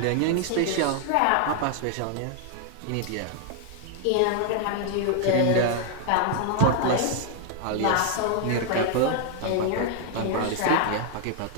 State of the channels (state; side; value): different; both; correlation 0.00